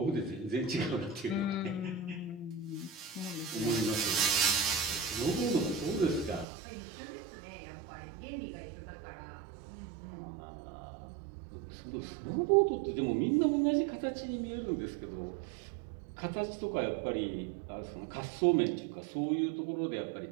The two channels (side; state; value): left; drops out; at 6.5 s